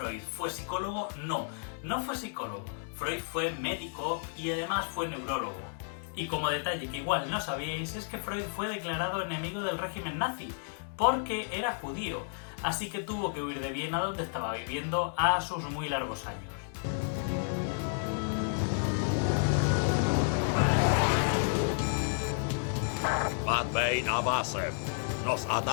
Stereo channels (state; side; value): silent; right; digital silence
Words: fue psicólogo, no fue psicólogo. Freud fue médico y además fue neurólogo. Y como detalle que igual no sabíais, es que Freud fue declarado enemigo del régimen nazi, porque era judío, así que tuvo que huir de Viena, donde estaba viviendo a sus muy largos años. Bad Bane Abasem. Nos